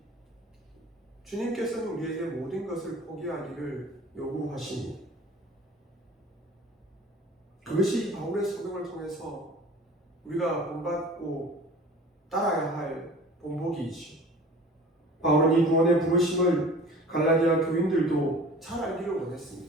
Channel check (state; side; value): normal; both; correlation 0.43